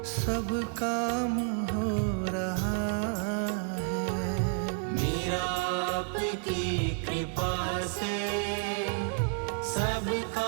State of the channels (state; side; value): silent; left; 58 dB below the other